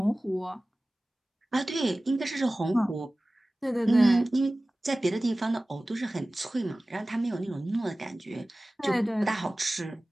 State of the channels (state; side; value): normal; both; correlation 0.97